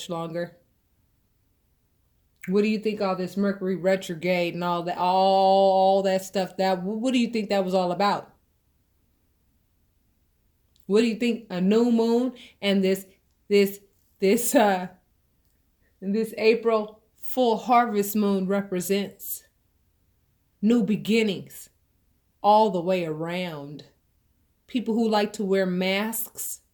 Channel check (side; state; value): both; identical; correlation 1.00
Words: longer. What do you think all this Mercury retrograde and all that stuff, what do you think that was all about? What do you think a new moon and this April full harvest moon represents? New beginnings all the way around. People who like to wear masks